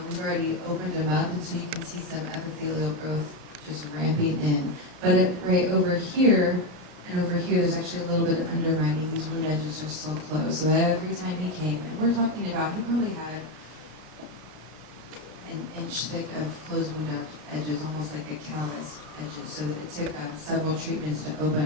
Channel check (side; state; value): left; late; 33 ms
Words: we've already opened them up, and so you can see some epithelial growth just ramping in. But right over here and over here, there's actually a little bit of undermining. These wound edges are still closed. So every time he came, and we're talking about, he probably had an inch thick of closed wound edges, almost like a calloused edges, so that it took several treatments to open